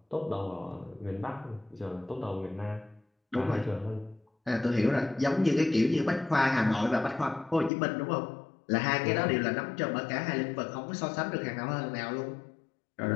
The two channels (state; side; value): drops out; right; at 7.7 s